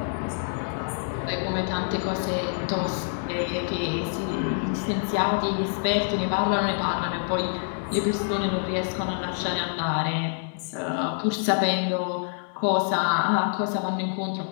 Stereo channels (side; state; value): right; silent; digital silence